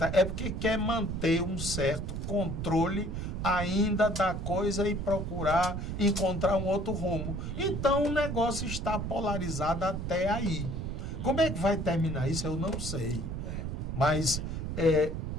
é porque quer manter um certo controle ainda da coisa e procurar encontrar um outro rumo. Então o negócio está polarizado até aí. Como é que vai terminar isso? Eu não sei. Mas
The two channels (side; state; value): right; noise; rumble, 4 dB below the sound